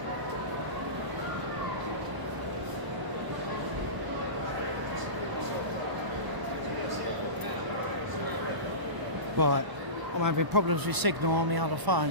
Right, I'm having problems with signal on my other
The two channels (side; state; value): left; late; 1.0 ms